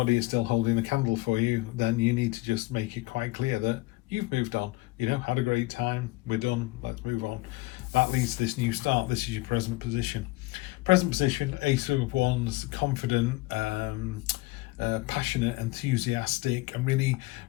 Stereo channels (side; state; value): right; quieter; 20.9 dB